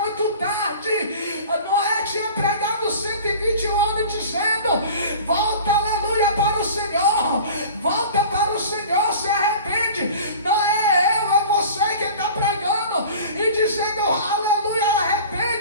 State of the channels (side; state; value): both; inverted; correlation -0.40